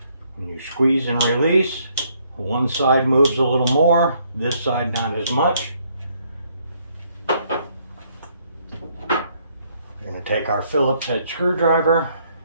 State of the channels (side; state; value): both; inverted; correlation -0.69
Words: When you squeeze and release, one side moves a little more, this side not as much. We're going to take our Phillips head screwdriver